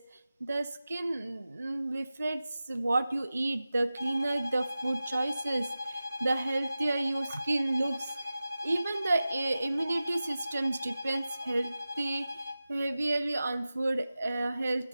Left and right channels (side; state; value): both; inverted; correlation -0.95